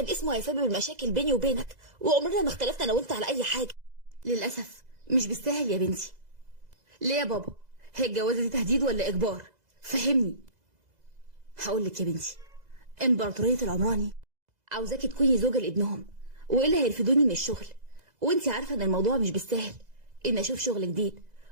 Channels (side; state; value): left; late; 2.0 ms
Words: اسمه هيسبب المشاكل بيني وبينك وعمرنا ما اختلفنا انا وانت على اي حاجه. للاسف مش بالسهل يا بنتي. ليه يا بابا؟ هي الجوازه دي تهديد ولا اجبار؟ فهمني. هقول لك يا بنتي، امبراطوريه العمراني عاوزاكي تكوني زوجه لابنهم، والا هيرفدوني من الشغل، وانت عارفه ان الموضوع مش بالسهل ان اشوف شغل جديد